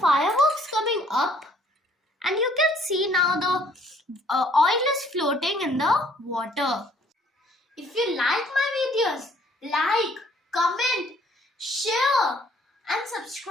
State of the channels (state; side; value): normal; both; correlation 0.61